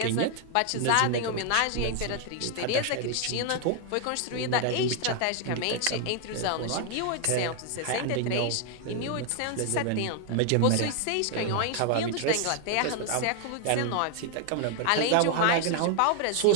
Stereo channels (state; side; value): different; both; correlation 0.00